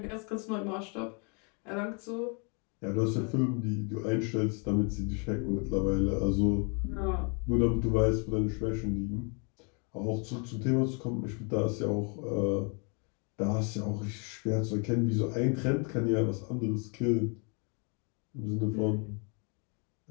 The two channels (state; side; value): quieter; right; 35.9 dB